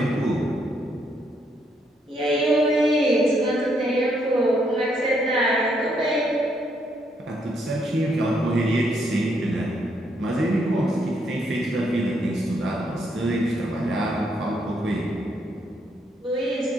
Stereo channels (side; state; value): both; normal; correlation 0.74